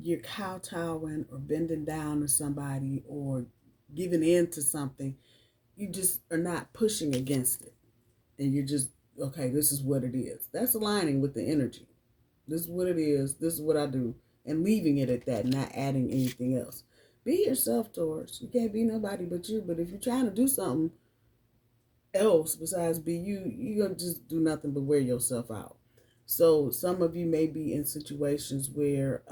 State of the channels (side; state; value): both; identical; correlation 1.00